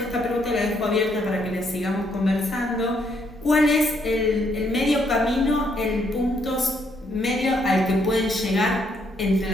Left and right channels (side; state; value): both; normal; correlation 0.72